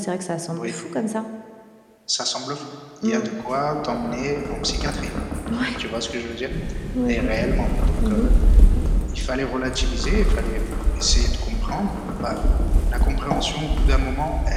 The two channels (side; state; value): both; identical; correlation 1.00